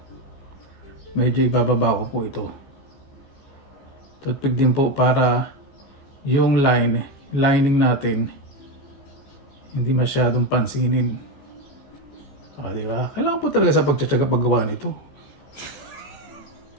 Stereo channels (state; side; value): late; right; 14 ms